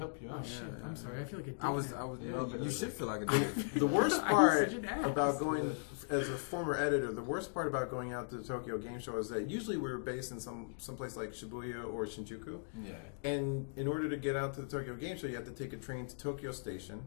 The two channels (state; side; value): silent; right; digital silence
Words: you Oh, out. shit. Yeah, I'm yeah. sorry. I feel like a dick I was. now. Yeah, you should feel like a dick. The worst I was part such an ass. about going, as a former editor, the worst part about going out to the Tokyo Game Show is that usually we're based in some place like Shibuya or Shinjuku, Yeah. and in order to get out to the Tokyo Game Show, you have to take a train to Tokyo Station,